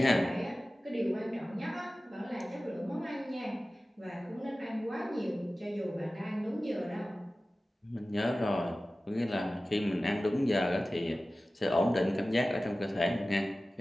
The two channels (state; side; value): normal; both; correlation 0.96